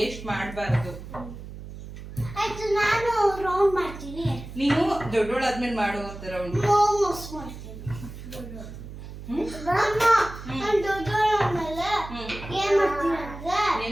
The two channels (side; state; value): right; noise; hum, 12 dB below the sound